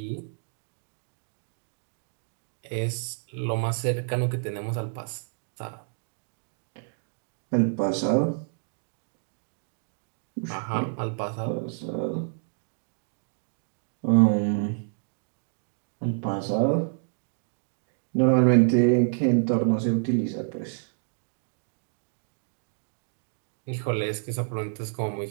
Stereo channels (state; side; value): silent; left; digital silence